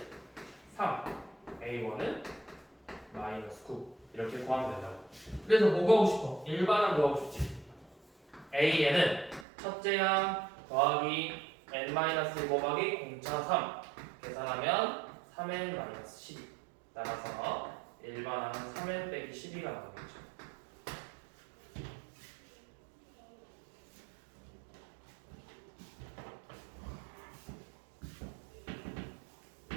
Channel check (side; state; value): left; drops out; at 9.5 s